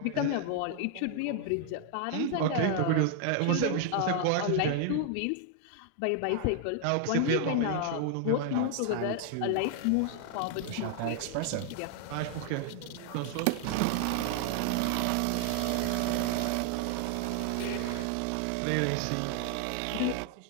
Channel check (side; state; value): both; different; correlation 0.00